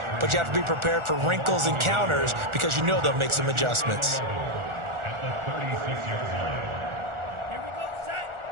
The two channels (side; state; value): left; late; 1.4 ms